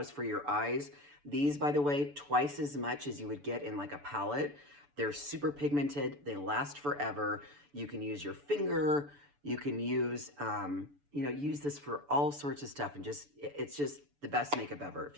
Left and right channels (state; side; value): late; left; 6.9 ms